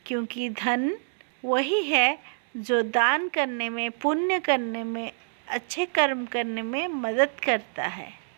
क्योंकि धन वही है जो दान करने में, पुण्य करने में, अच्छे कर्म करने में मदद करता है।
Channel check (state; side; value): silent; left; 60 dB below the other